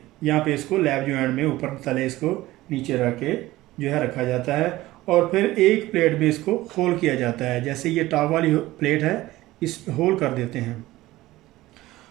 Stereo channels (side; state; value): left; quieter; 17.4 dB